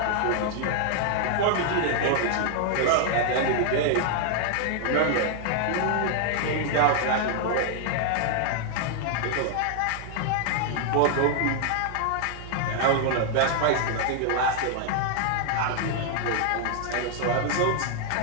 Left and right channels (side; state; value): both; different; correlation 0.00